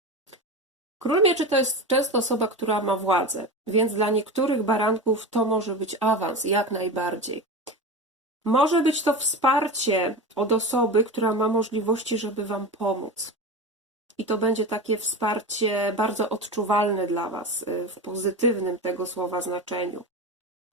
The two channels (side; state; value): both; normal; correlation 0.25